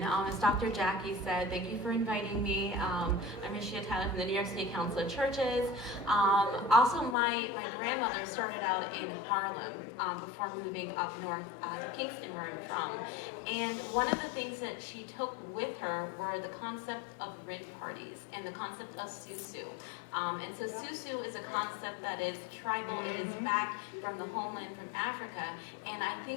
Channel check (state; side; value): drops out; right; at 7.2 s